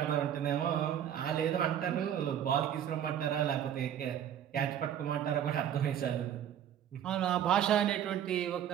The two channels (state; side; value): quieter; left; 9.9 dB